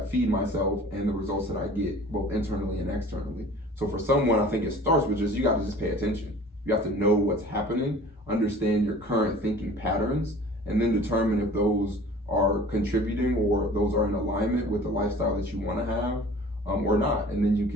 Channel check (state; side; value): normal; both; correlation 0.45